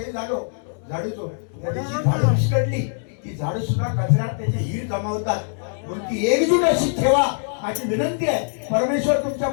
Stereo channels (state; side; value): silent; right; 64 dB below the other